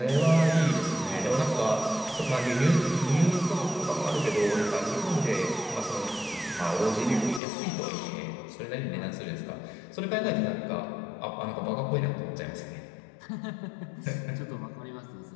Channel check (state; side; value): drops out; right; at 7.4 s